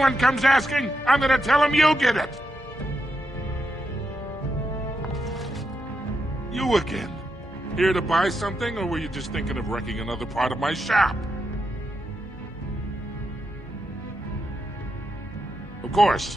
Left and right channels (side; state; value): both; normal; correlation 0.83